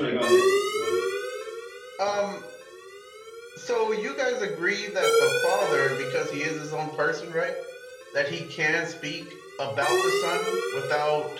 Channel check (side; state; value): both; identical; correlation 1.00